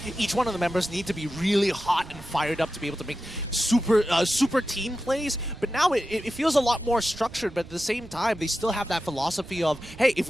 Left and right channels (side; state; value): right; noise; rumble, 17 dB below the sound